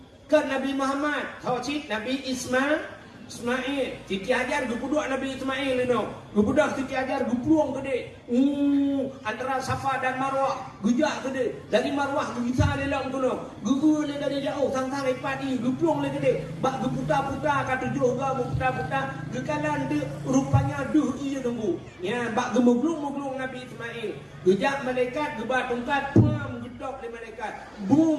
Kan Nabi Muhammad, Tauhid Nabi Ismail. Siti Hajar gupuduk Nabi Ismail itu. Gupudak Siti Hajar gupluang gede. Antara Safa dan Marwah gejak gede. Dari Marwah gisa lelang tu no. Gugu le dari jauh sang-sang ipadi gupluang le gede. Bak geputa-puta kata juga geputa-puta gekalan de rupanya duh ia nunggu. Ya bak gemuglung-muglung Nabi Ismail. Gejak malaikat gebat tongkat pam gedok le malaikat.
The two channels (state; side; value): identical; both; correlation 1.00